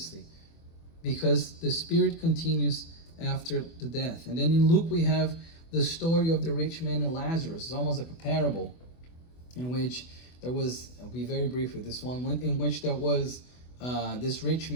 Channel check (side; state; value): right; late; 24 ms